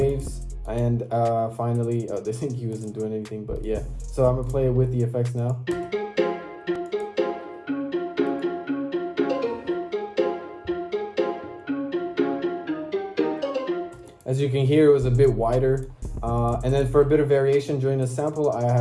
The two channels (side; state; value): both; identical; correlation 1.00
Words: and finally, this EQ isn't doing anything, but yeah. So I'm gonna play it with the effects now. As you can hear, it was a bit wider. And then for a bit of variation during the sample, I